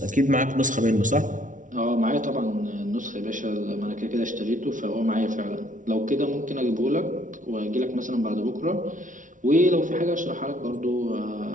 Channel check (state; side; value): late; left; 0.37 ms